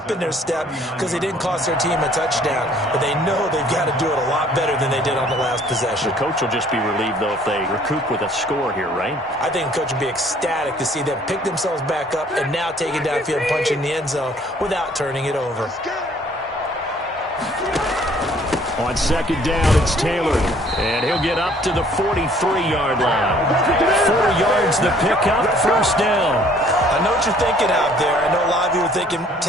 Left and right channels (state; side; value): normal; both; correlation 0.58